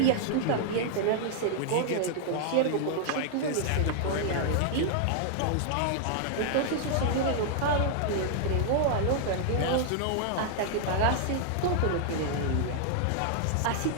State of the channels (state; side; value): different; both; correlation -0.01